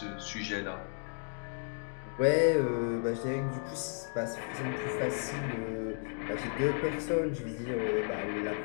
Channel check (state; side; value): silent; right; 55 dB below the other